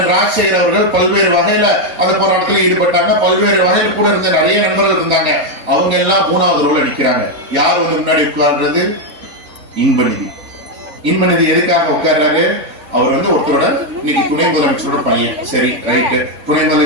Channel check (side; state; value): left; late; 4.3 ms